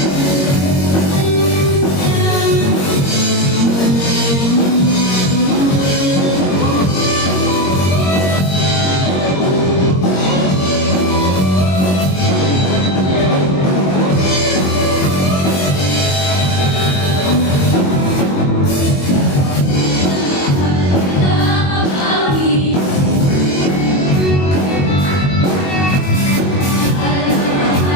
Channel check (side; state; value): right; late; 21 ms